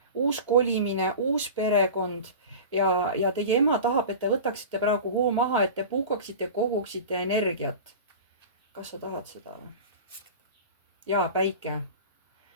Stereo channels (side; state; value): both; inverted; correlation -0.33